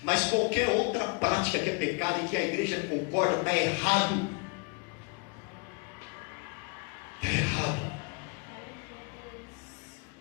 Mas qualquer outra prática que é pecado e que a igreja concorda, está errado. Está errado.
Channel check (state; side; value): quieter; right; 30.4 dB